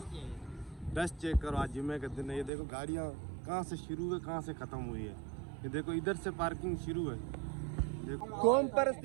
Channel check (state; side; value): drops out; left; at 2.5 s